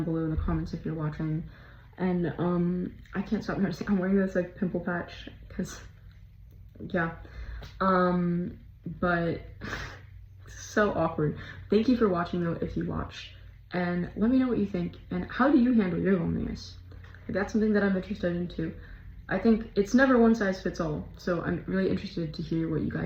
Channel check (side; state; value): both; identical; correlation 1.00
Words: below in the comments if you're watching. And I can't stop noticing I'm wearing this like pimple patch, because yeah. But so awkward. Thank you for watching though, if you watched. And let me know what you think, and how do you handle your loneliness? Like, that's something that I'm interested in too. I think it's never one size fits all, so I'm really interested to hear what you